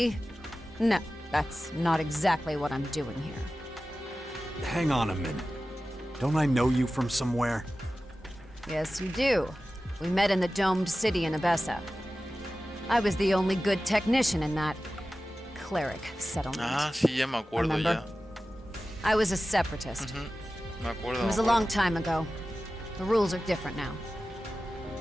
No, that's not exactly what I'm doing here. Hang on a minute. Don't I know you from somewhere? Yes, you do. We met in the domed city in Abessa. I was the only good technician in that cleric settlement. Ah, sí, ya me acuerdo Remember? ya. I was a separatist. Me acuerdo. It was a long time ago. The rules are different now.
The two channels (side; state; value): both; normal; correlation 0.95